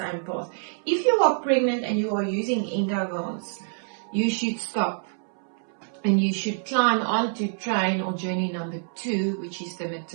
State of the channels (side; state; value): left; silent; 61 dB below the other